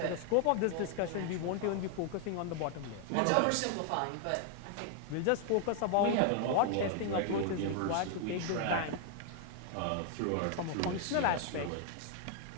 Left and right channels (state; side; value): different; both; correlation 0.00